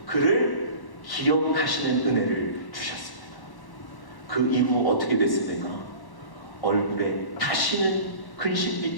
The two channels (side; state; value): right; late; 1.1 ms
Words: 그를 기억하시는 은혜를 주셨습니다. 그 이후 어떻게 됐습니까? 얼굴에 다시는